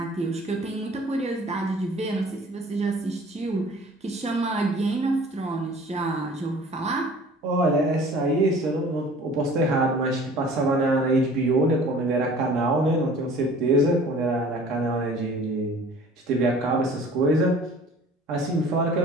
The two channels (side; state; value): both; normal; correlation 0.48